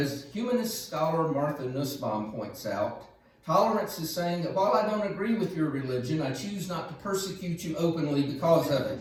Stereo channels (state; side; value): identical; both; correlation 1.00